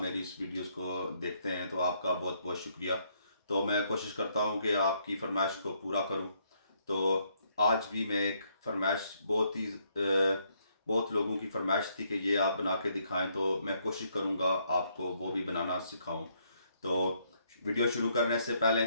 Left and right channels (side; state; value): both; inverted; correlation -0.72